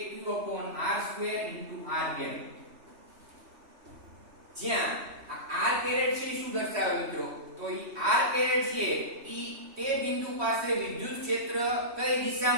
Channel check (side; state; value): left; late; 3.1 ms